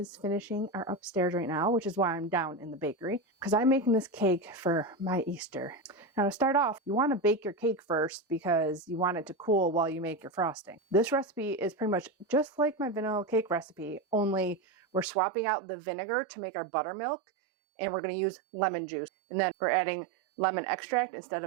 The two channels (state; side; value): drops out; left; at 15.1 s